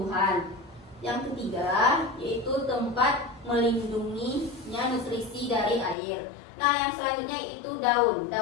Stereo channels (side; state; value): right; drops out; at 6.0 s